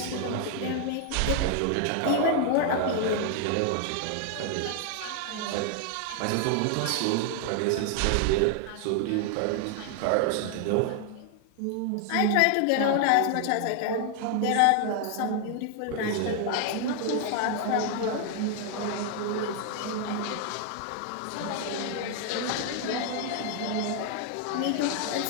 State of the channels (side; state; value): both; different; correlation 0.00